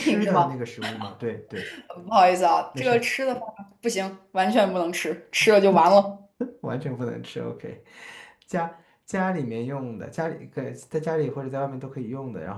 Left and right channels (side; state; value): both; identical; correlation 1.00